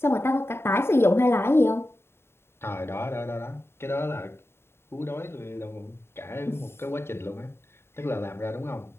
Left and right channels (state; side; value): late; right; 0.12 ms